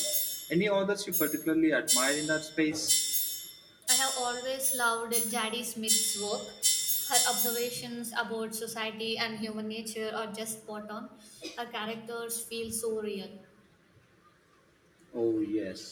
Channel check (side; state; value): both; identical; correlation 1.00